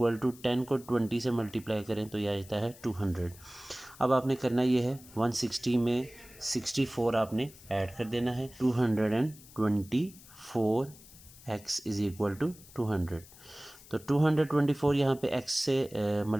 टू 10 को 20 से मल्टीप्लाई करें तो यह आ जाता है 200। अब आपने करना ये है 160 में 64 आपने ऐड कर देना है, 224x इज़ इक्वल टू 200। तो 224 यहाँ पे x से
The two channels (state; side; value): noise; left; hiss, 21 dB below the sound